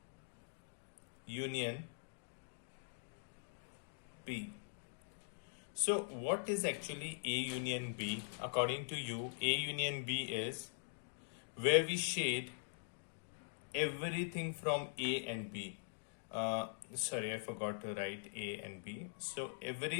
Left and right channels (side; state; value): right; silent; digital silence